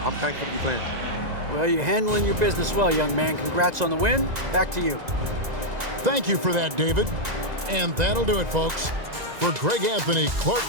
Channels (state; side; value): late; left; 2.0 ms